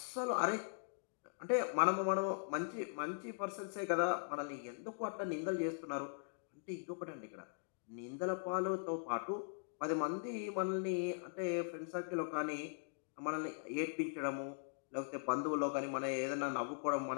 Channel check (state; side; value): silent; right; digital silence